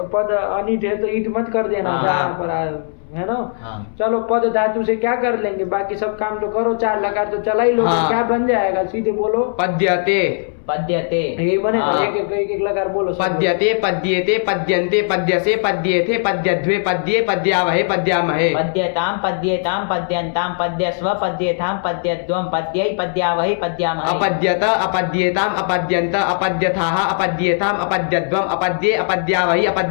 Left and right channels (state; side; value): silent; right; 67 dB below the other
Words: पद अनिट है तो ईट मत कर देना हाँ। जहाँ पर है ना। हाँ। चलो, पद धातु से क्या कर लेंगे, बाकी सब काम तो करो, 4 लकार तो चला ही लो। हाँ। क्या बन जाएगा, सीधे बोलो। पद्यते पद्यते। यही बनेगा, हाँ। एक लकार बोलो। सब पद्यते पद्येते पद्यन्ते पद्यसे पद्येथे पद्यध्वे पद्ये पद्यावहे पद्यामहे। पद्यताम पद्येताम पद्यन्ताम पद्यस्व पद्येथाम पद्यद्वम पद्यै पद्यावहि पद्यामहे। अपद्यत अपद्येताम अपद्यन्त अपद्यथाः अपद्येताम अपद्यद्वम अपद्ये अपद्यावहि